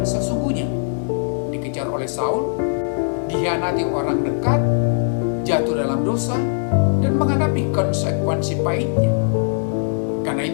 sesungguhnya, dikejar oleh Saul, dikhianati orang dekat, jatuh dalam dosa, dan menghadapi konsekuensi pahitnya. Karena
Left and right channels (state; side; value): silent; right; digital silence